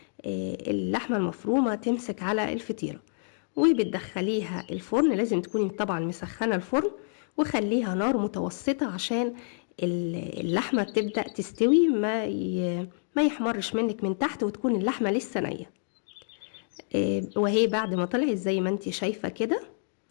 اللحمة المفرومة تمسك على الفطيرة. وبتدخليها الفرن، لازم تكوني طبعا مسخنة الفرن، وخليها نار متوسطة عشان اللحمة تبدأ تستوي، ما يحمرش منك من تحت وتكون اللحمة لسه نية. وهي بعد ما طلعت زي ما انت شايفة كده،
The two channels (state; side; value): silent; right; digital silence